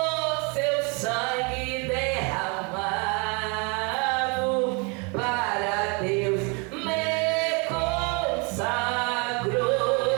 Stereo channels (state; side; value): quieter; left; 32.1 dB